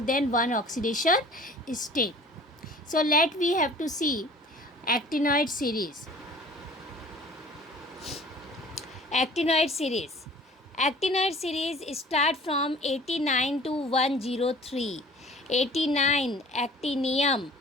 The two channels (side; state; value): both; normal; correlation 0.47